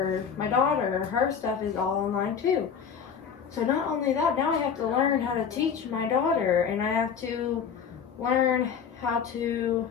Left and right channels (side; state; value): right; quieter; 7.0 dB